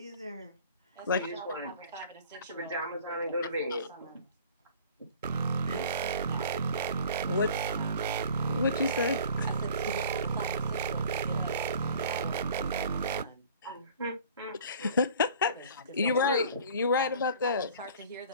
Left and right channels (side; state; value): both; inverted; correlation -0.47